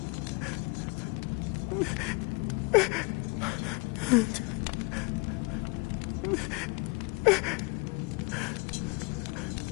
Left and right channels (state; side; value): quieter; right; 29.1 dB